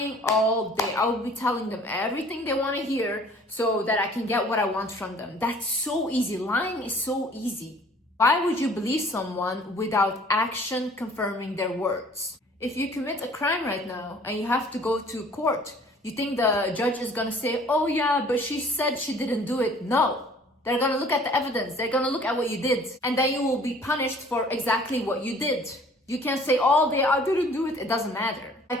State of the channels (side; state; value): both; normal; correlation 0.53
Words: all day. I would be telling them everything they want to hear so that I can get what I want from them. That's so easy. Lying is so easy. Why would you believe someone without action confirming their words? If you commit a crime right now and you have to go to court, you think the judge is gonna say, oh yeah, but she said she didn't do it? No. They're gonna look at the evidence. They're gonna look at what you did. And then you will be punished for exactly what you did. You can't say, oh, I didn't do it. It doesn't matter.